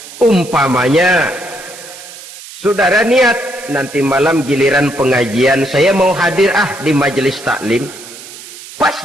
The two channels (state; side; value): noise; right; hiss, 16 dB below the sound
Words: Umpamanya, saudara niat, nanti malam giliran pengajian, saya mau hadir di majelis taklim. Pas